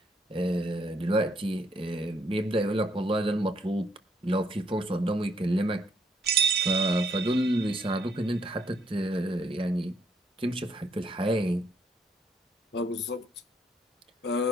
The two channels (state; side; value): normal; both; correlation 0.72